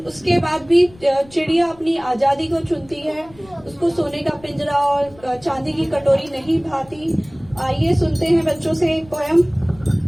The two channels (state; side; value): noise; left; rumble, 24 dB below the sound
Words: उसके बाद भी चिड़िया अपनी आजादी को चुनती है। उसको सोने का पिंजरा और चांदी की कटोरी नहीं भाती। आइए सुनते हैं बच्चों से एक पोयम।